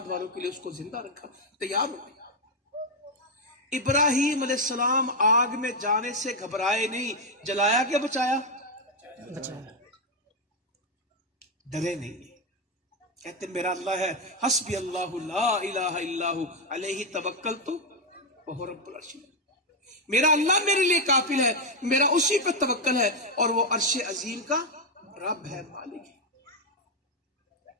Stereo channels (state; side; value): normal; both; correlation 0.04